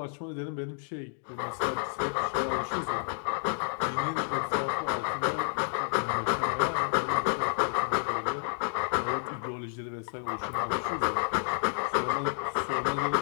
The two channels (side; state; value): right; silent; 58 dB below the other